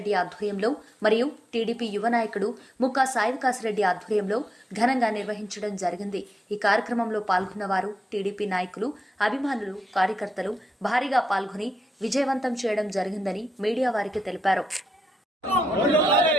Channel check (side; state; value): both; normal; correlation 0.85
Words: ఆధ్వర్యంలో మరియు టీడీపీ యువ నాయకుడు ముక్కా సాయివికాసరెడ్డి ఆధ్వర్యంలో ఘనంగా నిర్వహించడం జరిగింది. ఈ కార్యక్రమంలో పాల్గొన్న వారు టీడీపీ నాయకులు, అభిమానులు, కార్యకర్తలు భారీగా పాల్గొని విజయవంతం చేయడం జరిగిందని మీడియా వారికి తెలిపారు.